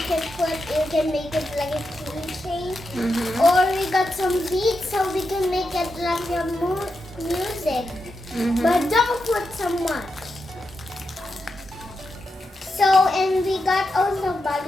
can make it like a keychain. Or we got some beats so we can make it like a music. But don't put so much. So, and we got also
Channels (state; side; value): normal; both; correlation 0.86